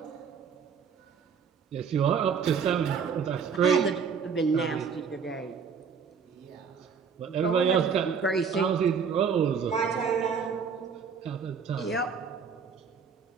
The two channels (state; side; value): quieter; left; 6.2 dB